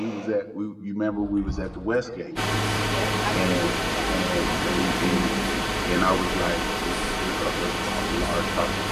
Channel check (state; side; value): identical; both; correlation 1.00